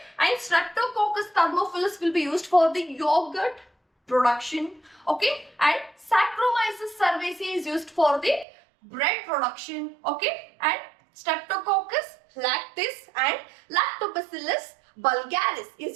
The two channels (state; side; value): drops out; left; at 8.5 s